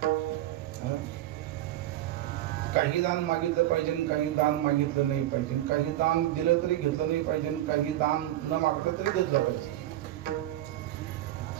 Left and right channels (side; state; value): left; quieter; 14.1 dB